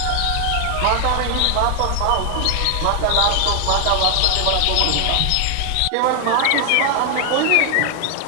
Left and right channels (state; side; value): different; both; correlation 0.00